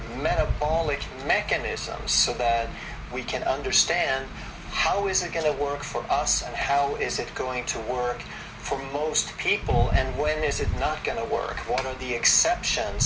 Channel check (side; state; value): both; identical; correlation 1.00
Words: metabolic mechanisms, so that we can understand how is it going to work for us and how is it going to work for most people, and when is it not going to work? What are the